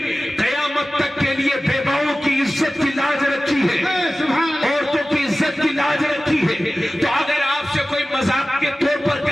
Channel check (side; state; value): both; normal; correlation 0.96